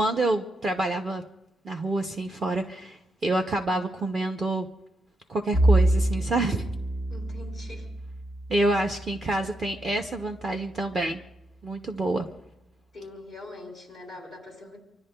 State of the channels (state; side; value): normal; both; correlation 0.83